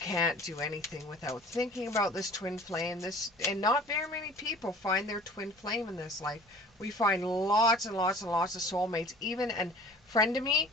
do anything without thinking about this twin flame. And not very many people find their twin flame in this life. We find lots and lots and lots of soulmates. Even a friend of me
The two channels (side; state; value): both; normal; correlation 0.46